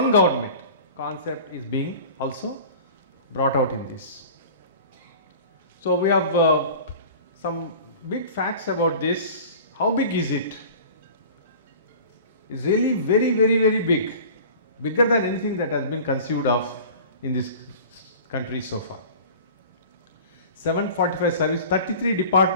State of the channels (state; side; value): inverted; both; correlation -0.41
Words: government concept is being also brought out in this. So we have some big facts about this. How big is it? It's really very, very, very big. Bigger than anything that has been conceived of in this country so far. 745 service, 33